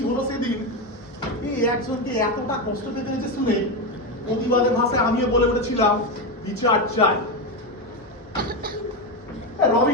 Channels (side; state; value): both; normal; correlation 0.12